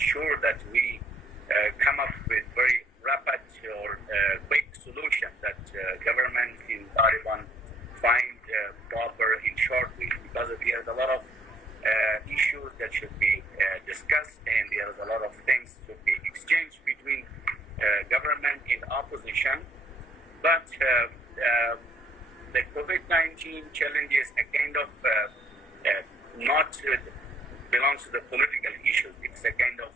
that we come up with very rapid or quick solution that government in Taliban find proper in short week, because there's a lot of issues that should be discussed, and there's a lot of things should be exchanged between government and opposition. But the COVID-19 challenge is a kind of not belongs to the political issues. It's a kind of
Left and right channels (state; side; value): normal; both; correlation 0.65